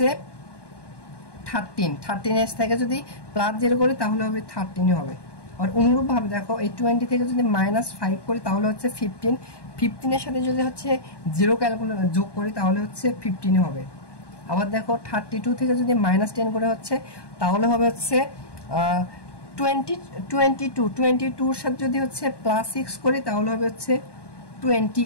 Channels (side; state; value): right; late; 1.2 ms